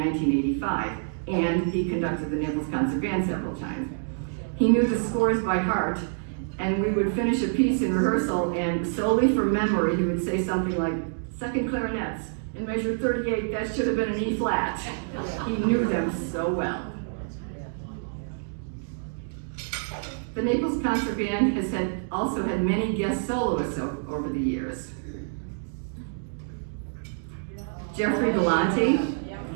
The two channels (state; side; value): silent; left; digital silence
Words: and he conducted the Naples Concert Band several times. He knew the scores by heart, and we would finish a piece in rehearsal, and solely from memory, he would say something like, second clarinets, in measure 38, that should have been an E flat. He knew them so well. The Naples Concert Band has also had many guest soloists over the years. Jeffrey Galante,